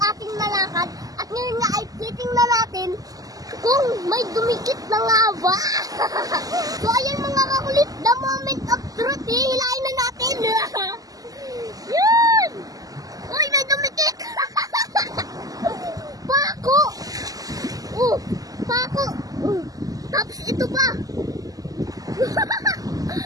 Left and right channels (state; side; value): late; left; 0.17 ms